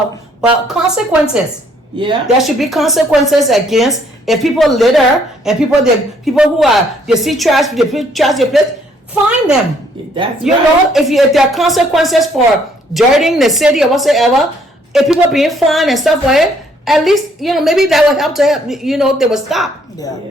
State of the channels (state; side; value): normal; both; correlation 0.65